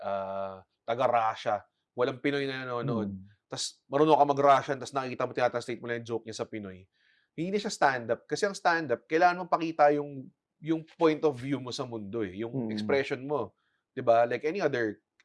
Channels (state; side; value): identical; both; correlation 1.00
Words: taga-Russia, walang Pinoy na nanonood, tapos marunong ka mag-Russian, tapos nakikita mo, tinatranslate mo lang yung joke niya sa Pinoy. Hindi na siya stand-up. Kasi ang stand-up, kailangan mong pakita yung point of view mo sa mundo eh, yung expression mo. Di ba? Like any other